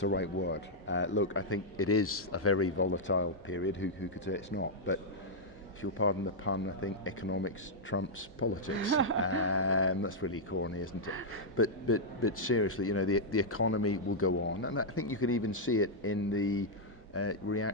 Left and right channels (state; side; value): normal; both; correlation -0.06